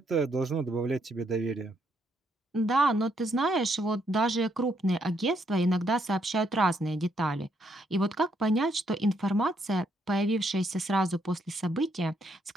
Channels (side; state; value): both; normal; correlation 0.74